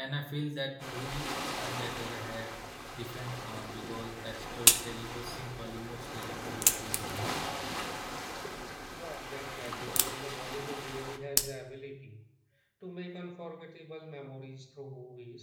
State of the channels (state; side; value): identical; both; correlation 1.00